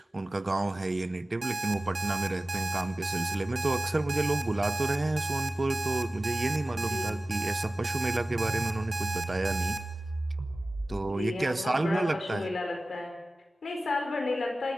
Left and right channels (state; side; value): normal; both; correlation 0.97